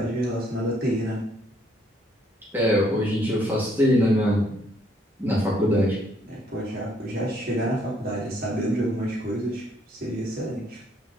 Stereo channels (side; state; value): both; normal; correlation 0.68